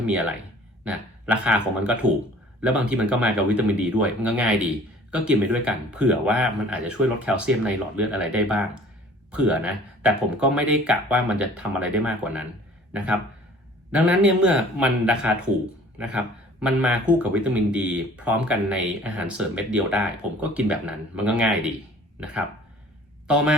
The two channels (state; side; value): normal; both; correlation 0.50